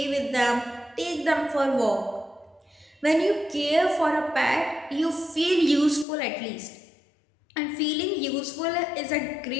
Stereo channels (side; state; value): right; drops out; at 6.1 s